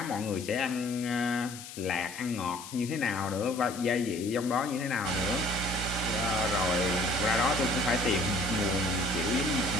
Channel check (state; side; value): noise; left; hiss, 13 dB below the sound